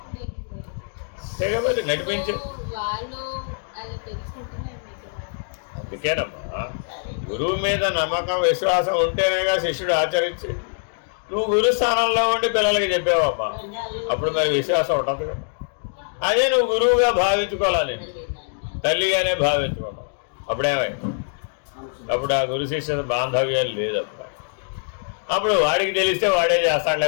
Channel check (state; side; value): silent; right; digital silence